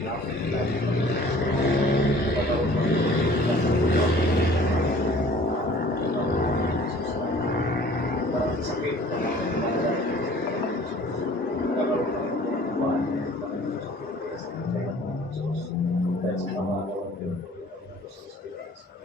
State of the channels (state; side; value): normal; both; correlation 0.50